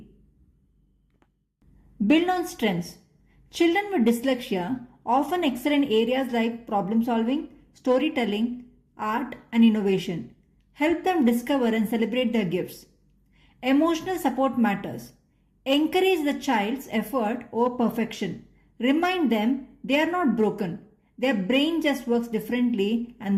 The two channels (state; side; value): identical; both; correlation 1.00